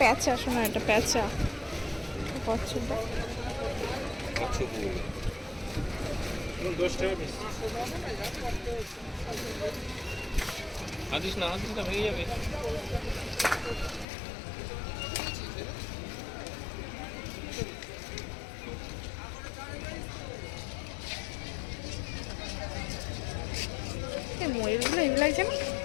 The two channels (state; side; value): drops out; right; at 14.1 s